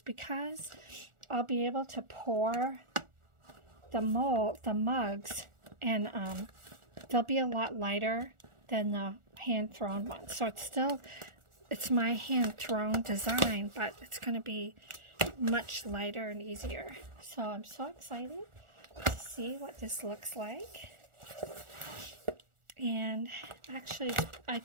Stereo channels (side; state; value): left; late; 1.4 ms